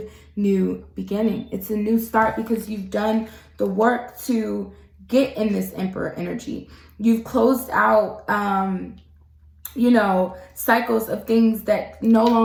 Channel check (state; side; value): identical; both; correlation 1.00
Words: new beginning. It's a new start because you've done the work to get in this Emperor energy. You've closed out, you know, cycles of things that no